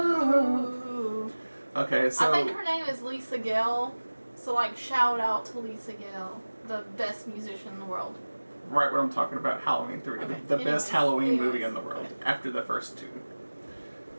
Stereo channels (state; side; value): inverted; both; correlation -1.00